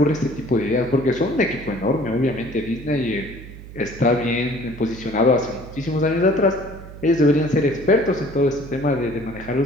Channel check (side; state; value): right; noise; hum, 15 dB below the sound